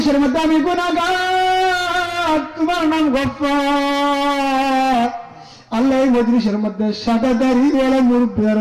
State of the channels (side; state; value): both; identical; correlation 1.00